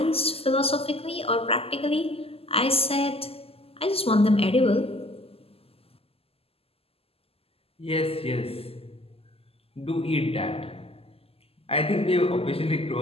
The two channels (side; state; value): right; late; 0.28 ms